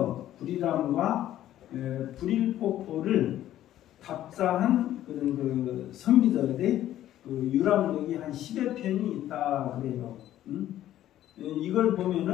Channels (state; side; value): quieter; right; 12.8 dB